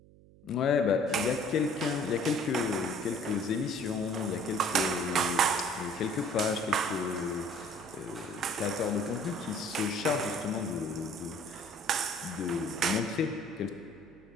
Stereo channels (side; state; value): right; noise; hum, 24 dB below the sound